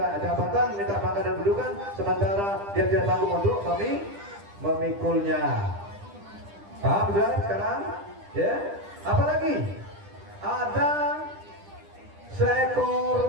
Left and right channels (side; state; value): left; late; 10 ms